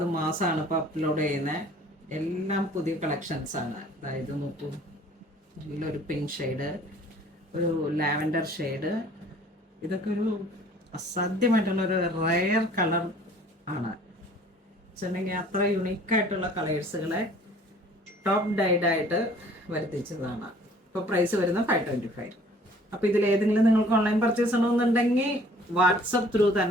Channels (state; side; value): normal; both; correlation 0.53